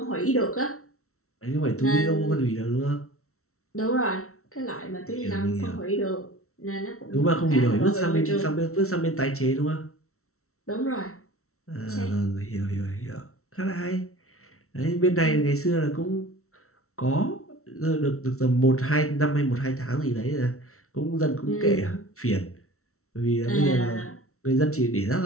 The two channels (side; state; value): right; late; 0.63 ms